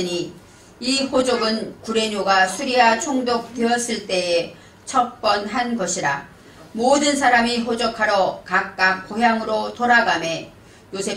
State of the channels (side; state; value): both; identical; correlation 1.00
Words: 이 호족은 구레뇨가 수리아 총독되었을 때에 첫 번 한 것이라. 모든 사람이 호족하러 각각 고향으로 돌아가매